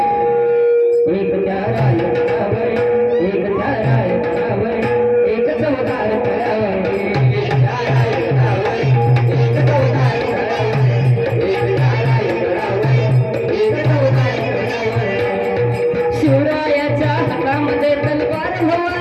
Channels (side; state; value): both; identical; correlation 1.00